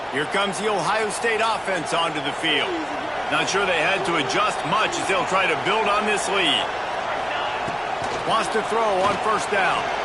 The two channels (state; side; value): identical; both; correlation 1.00